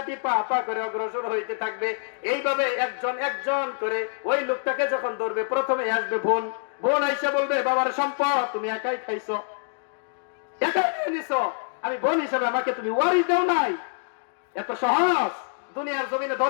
পা পা করে অগ্রসর হইতে থাকবে, এইভাবে একজন একজন করে ওই লোকটাকে যখন ধরবে, প্রথমে আসবে বোন, বোন আইসা বলবে, বাবার সম্পদ তুমি একাই খাইছো, একাই নিয়ে নিছো, আমি বোন হিসেবে আমাকে তুমি ওয়ারিশ দেও নাই, এত সহজ দুনিয়ার জমিনে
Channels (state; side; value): silent; right; digital silence